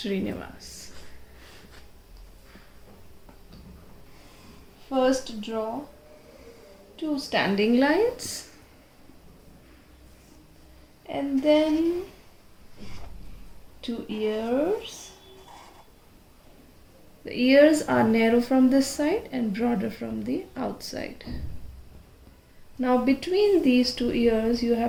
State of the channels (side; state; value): both; identical; correlation 1.00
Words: First draw two standing lines and then two ears. The ears are narrow from this side and broader from the outside. Now between these two ears you